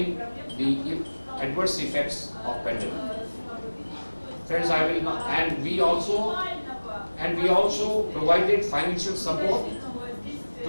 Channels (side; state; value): both; inverted; correlation -1.00